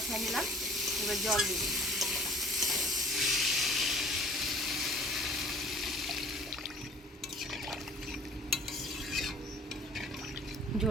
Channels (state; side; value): normal; both; correlation 0.49